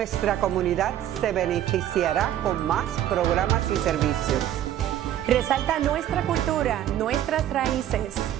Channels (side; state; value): left; quieter; 11.8 dB